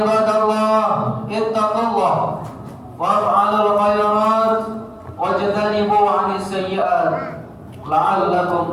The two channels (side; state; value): both; identical; correlation 1.00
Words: ittaqullah waf'alul khairat wajtanibu 'anis sayyi'at